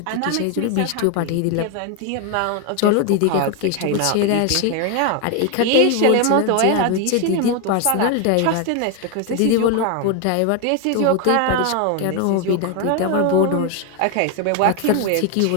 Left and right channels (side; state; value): both; different; correlation 0.01